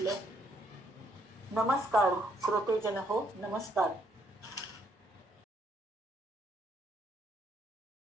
नमस्कार श्रोतेजन हो नमस्कार.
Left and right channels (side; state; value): both; normal; correlation 0.71